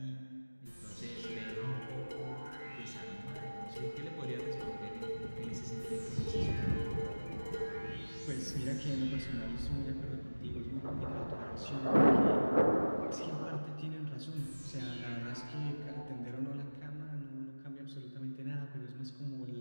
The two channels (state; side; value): inverted; both; correlation -1.00